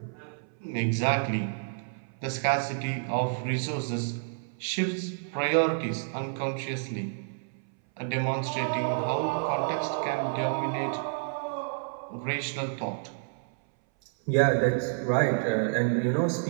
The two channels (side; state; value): left; silent; 58 dB below the other